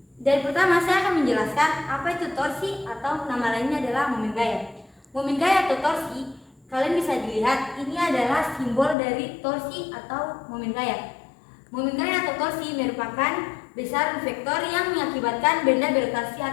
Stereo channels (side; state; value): right; drops out; at 9.0 s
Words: Dan pertama saya akan menjelaskan apa itu torsi atau nama lainnya adalah momen gaya. Momen gaya atau torsi, kalian bisa dilihat ini adalah simbol dari torsi atau momen gaya. Momen gaya atau torsi merupakan besaran vektor yang mengakibatkan benda berotasi